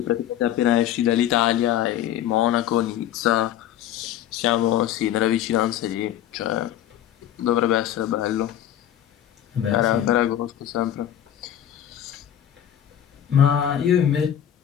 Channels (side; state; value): right; quieter; 10.9 dB